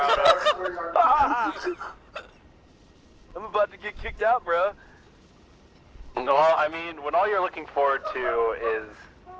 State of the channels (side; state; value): both; identical; correlation 1.00